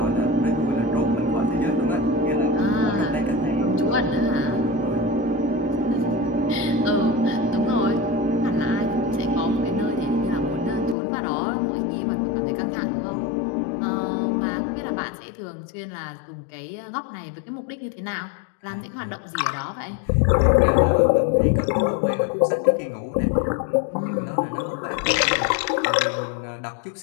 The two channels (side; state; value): right; drops out; at 11.0 s